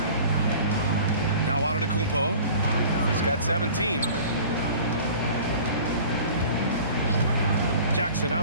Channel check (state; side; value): inverted; both; correlation -0.44